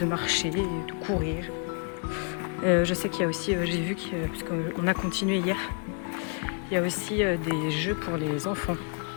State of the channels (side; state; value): right; quieter; 39.3 dB